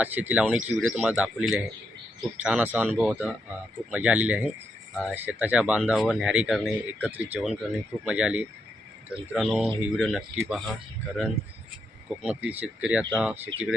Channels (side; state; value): both; normal; correlation 0.80